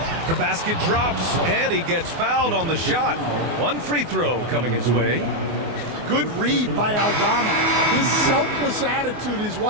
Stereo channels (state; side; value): late; left; 24 ms